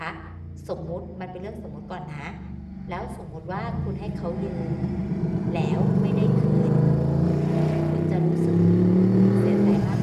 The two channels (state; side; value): identical; both; correlation 1.00